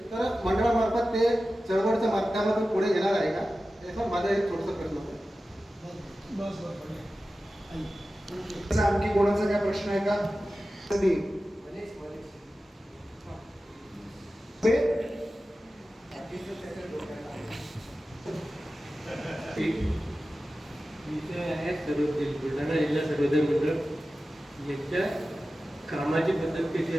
तर मंडळामार्फत ते चळवळच्या माध्यमातून पुढे येणार आहे का, याचा माझा एक छोटासा प्रश्न होता. आणखी कोणाचा काय प्रश्न आहे का? बुलढाणा जिल्हा सर्वोदय मंडळ यांच्या कामाची पद्धत कशी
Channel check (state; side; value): normal; both; correlation 0.94